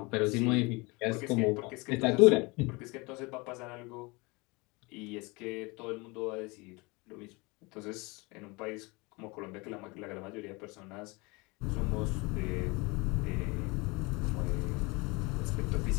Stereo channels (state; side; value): quieter; right; 26.1 dB